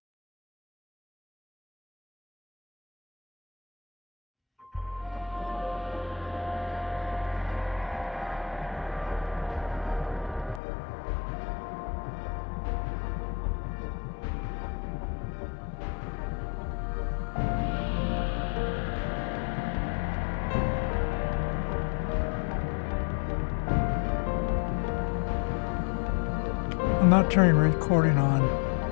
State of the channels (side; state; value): right; drops out; at 10.6 s